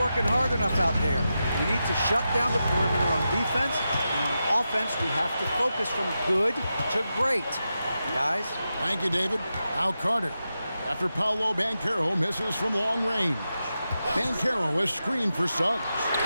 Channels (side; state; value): both; inverted; correlation -0.89